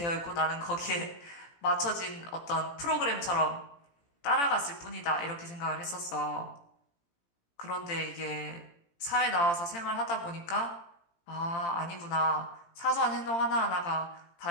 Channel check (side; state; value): right; late; 18 ms